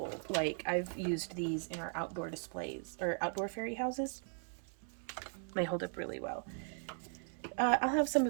Like, I've used these in our outdoor displays or outdoor fairy houses. They hold up really well. I'll have some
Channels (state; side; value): silent; left; 52 dB below the other